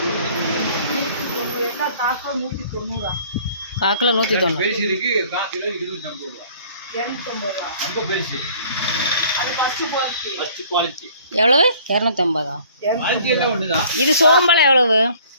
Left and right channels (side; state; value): both; inverted; correlation -0.54